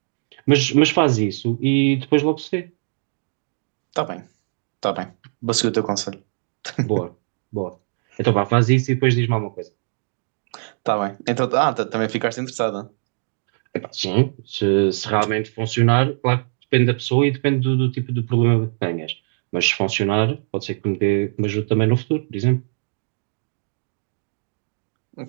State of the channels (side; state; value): left; silent; digital silence